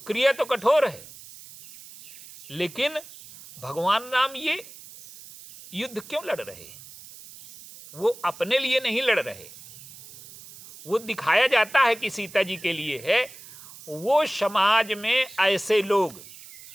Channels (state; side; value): noise; right; hiss, 18 dB below the sound